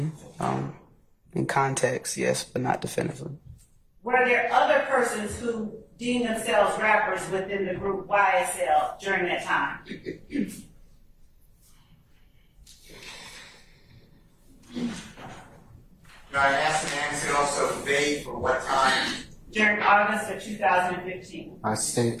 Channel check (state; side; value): identical; both; correlation 1.00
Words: In context, yes, but not definitively. Were there other persons who deemed themselves rappers within the group YSL during that time? Now, I asked and answered also vague for what time. During August of 2015. I